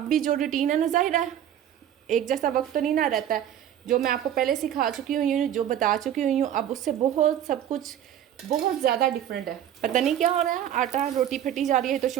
भी जो रूटीन है ना, ज़ाहिर है एक जैसा वक्त तो नहीं ना रहता है, जो मैं आपको पहले सिखा चुकी हुई हूँ, जो बता चुकी हुई हूँ, अब उससे बहुत सब कुछ बहुत ज़्यादा डिफरेंट है। पता नहीं क्या हो रहा है, आटा रोटी फटी जा रही है तो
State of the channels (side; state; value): left; quieter; 10.5 dB